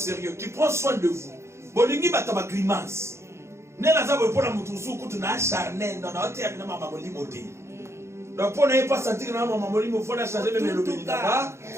qui prend soin de vous, bolingi bataba grimace. Nela zabo pour la mutusu kutuna charnel dans la terre na mama molimote. Donc pour ne pas sentir na mama molimo faut na changer même le béni là-bas.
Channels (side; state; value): left; late; 0.13 ms